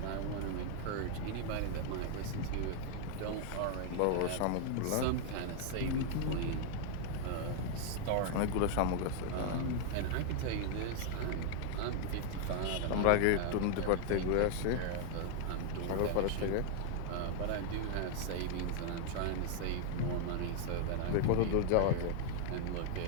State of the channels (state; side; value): different; both; correlation 0.00